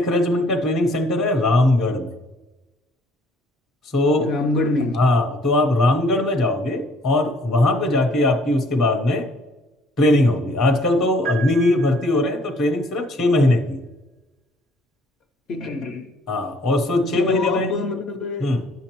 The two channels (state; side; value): normal; both; correlation 0.60